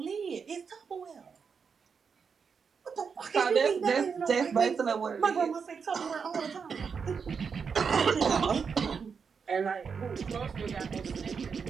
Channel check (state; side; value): quieter; left; 6.0 dB